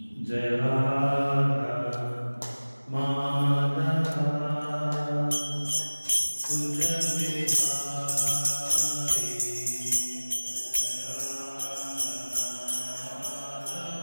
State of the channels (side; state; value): both; inverted; correlation -1.00